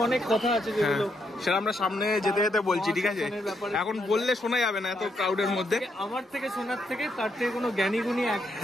অনেক কথা আছে যেগুলো সেটা আমরা সামনে যেতে যেতে বলছি, ঠিক আছে। এখন বললে শোনা যাবে না এত ক্রাউডের মধ্যে। আমার থেকে শোনার থেকে, তার থেকে কোনো জ্ঞানী গুণী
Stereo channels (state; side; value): normal; both; correlation 0.78